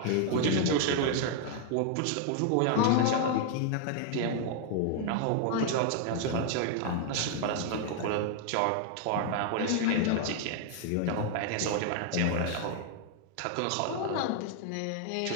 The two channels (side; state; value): both; different; correlation 0.00